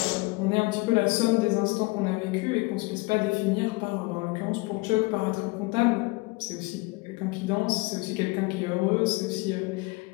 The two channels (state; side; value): quieter; right; 24.8 dB